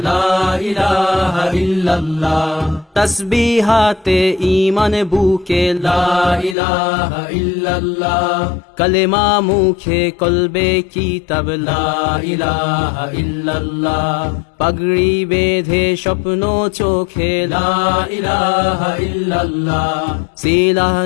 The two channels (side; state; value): right; drops out; at 6.6 s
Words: লা ইলাহা ইল্লাল্লাহ, তাসবিহাতে ঈমান বুকে লা ইলাহা ইল্লাল্লাহ, কালেমা মুখে কলবে কিতাব লা ইলাহা ইল্লাল্লাহ, পাগড়ি বেঁধে স্বপ্ন চোখে লা ইলাহা ইল্লাল্লাহ, সিলাহ